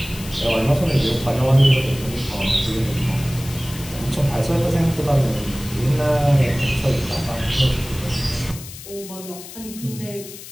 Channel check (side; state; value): left; noise; hiss, 14 dB below the sound